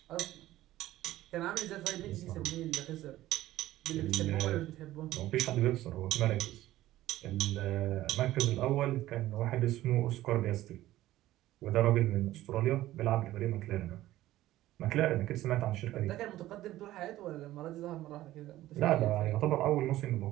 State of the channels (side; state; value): left; quieter; 15.1 dB